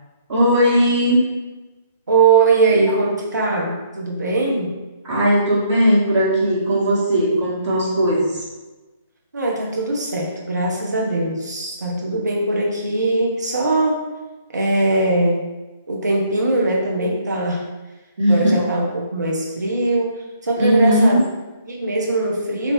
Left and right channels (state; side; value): inverted; both; correlation -0.65